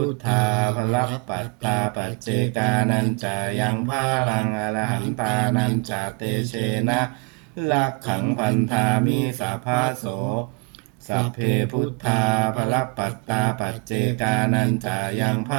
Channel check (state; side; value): quieter; left; 30.8 dB